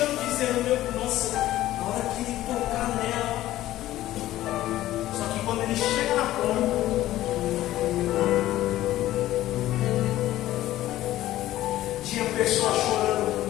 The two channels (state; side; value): quieter; right; 14.6 dB